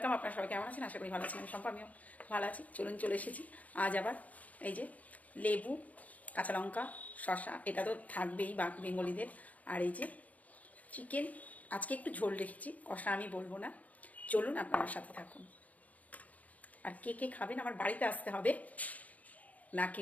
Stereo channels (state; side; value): late; right; 0.074 ms